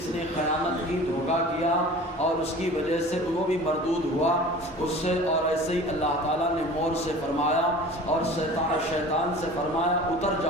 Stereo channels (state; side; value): normal; both; correlation 0.41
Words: نے خیانت کی، دھوکہ کیا، اور اس کی وجہ سے وہ بھی مردود ہوا اس سے۔ اور ایسے ہی اللہ تعالیٰ نے مور سے فرمایا اور شیطان سے فرمایا اتر